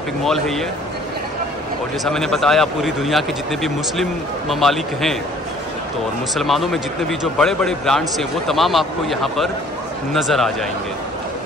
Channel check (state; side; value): normal; both; correlation 0.55